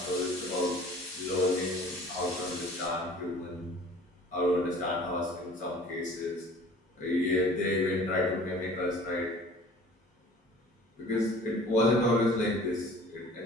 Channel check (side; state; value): both; normal; correlation 0.48